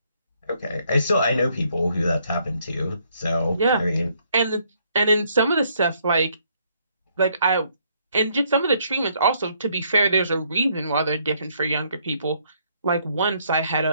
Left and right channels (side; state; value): both; inverted; correlation -0.70